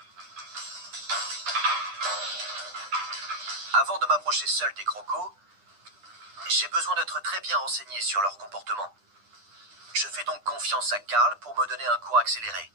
Avant de m'approcher seul des crocos, j'ai besoin d'être très bien renseigné sur leur comportement. Je fais donc confiance à Carl pour me donner un cours accéléré.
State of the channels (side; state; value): left; late; 9.9 ms